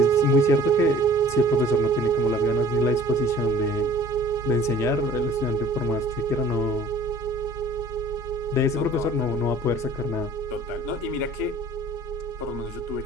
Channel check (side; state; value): both; normal; correlation 0.49